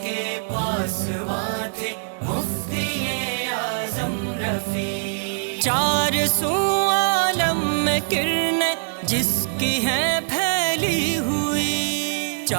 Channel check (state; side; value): silent; left; digital silence